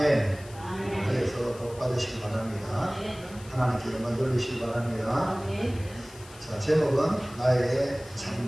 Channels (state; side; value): noise; left; hiss, 20 dB below the sound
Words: 그래서 복 받으시기 바랍니다. 하나님께 영광 돌리시기 바랍니다. 자, 제목은 나의